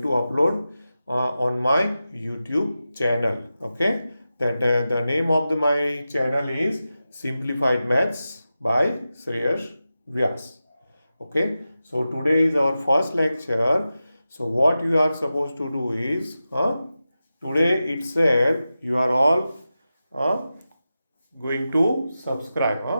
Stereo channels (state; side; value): inverted; both; correlation -0.93